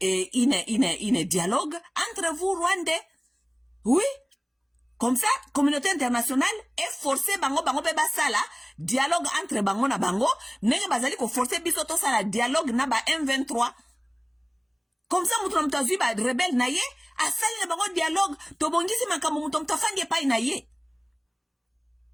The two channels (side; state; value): both; identical; correlation 1.00